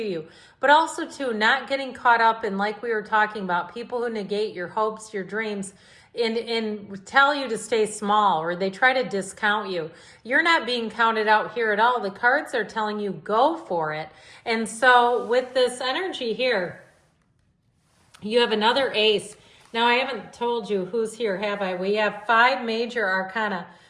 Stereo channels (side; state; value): both; identical; correlation 1.00